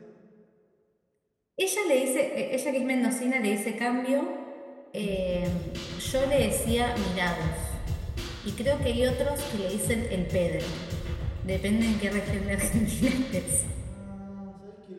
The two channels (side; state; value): both; identical; correlation 1.00